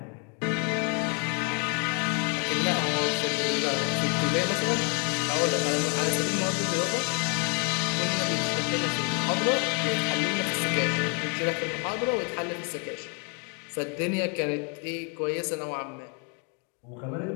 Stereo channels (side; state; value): right; quieter; 34.9 dB